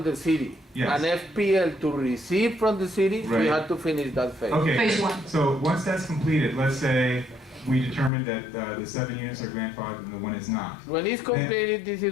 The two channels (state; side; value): drops out; right; at 8.1 s